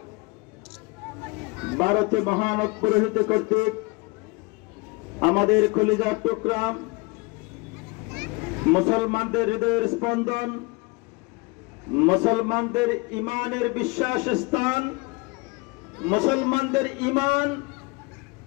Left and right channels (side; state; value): right; quieter; 26.9 dB